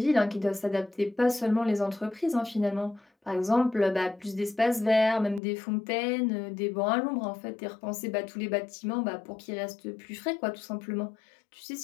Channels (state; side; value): drops out; right; at 5.4 s